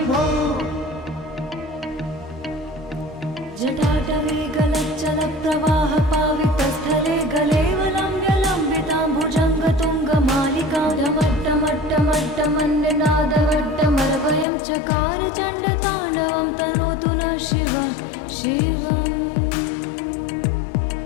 जटाटवे गलच्चलप्रवाह पावितस्थले गलेवलम्ब्यलम्बितां भुजङ्गतुङ्गमालिकां ढमट्टमट्टमट्टमन्निनादवट्टमर्वयं चकार चण्डताण्डवं तनोतु नः शिवं शिवम्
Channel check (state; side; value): drops out; right; at 14.5 s